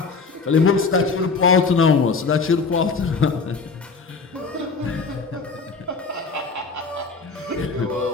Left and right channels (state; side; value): quieter; right; 4.6 dB